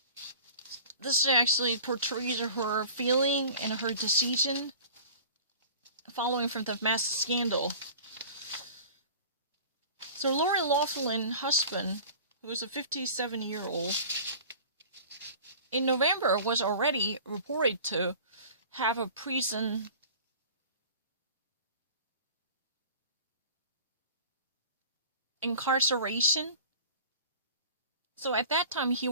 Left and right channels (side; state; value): both; inverted; correlation -0.41